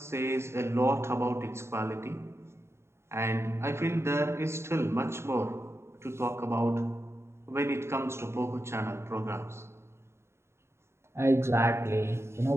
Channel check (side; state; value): left; late; 0.13 ms